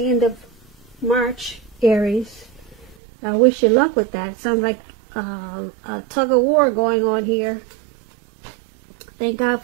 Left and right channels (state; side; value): drops out; left; at 3.0 s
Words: end of March, Aries. I wish you luck with that. It sounds like a tug of war going on here. Thank God